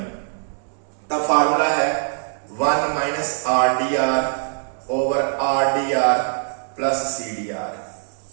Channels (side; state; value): left; silent; digital silence